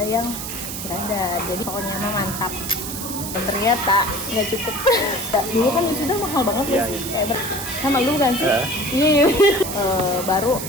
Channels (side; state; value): right; noise; hiss, 7 dB below the sound